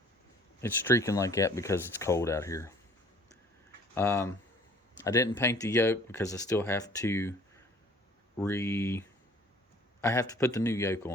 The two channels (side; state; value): both; normal; correlation 0.52